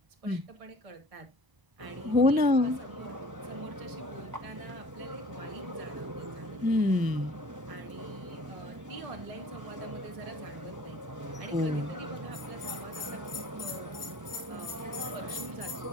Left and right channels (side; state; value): left; late; 1.0 ms